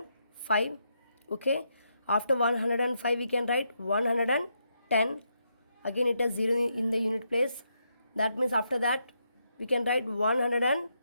Okay, after 105 we can write 110. Again it has 0 in the unit place, that means after that we can write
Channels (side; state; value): both; inverted; correlation -0.80